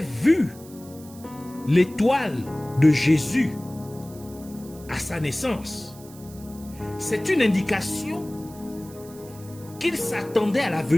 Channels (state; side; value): noise; right; hiss, 21 dB below the sound